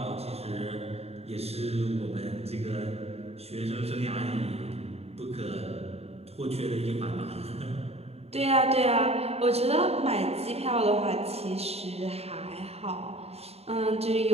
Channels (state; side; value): late; left; 0.30 ms